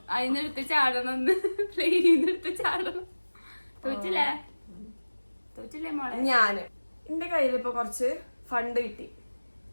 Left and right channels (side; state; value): both; inverted; correlation -1.00